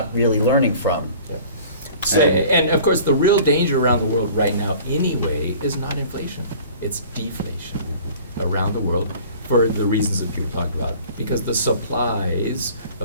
really learning from. Yep. So- And of course, the real danger around the world right now anyway is not inflation, it's deflation around the world for the reasons that people talked about, because the supplies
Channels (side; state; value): both; inverted; correlation -0.46